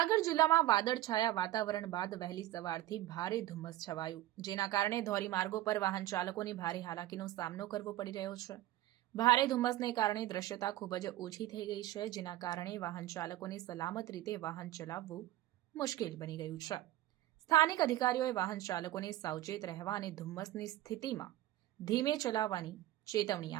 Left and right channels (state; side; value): quieter; left; 15.3 dB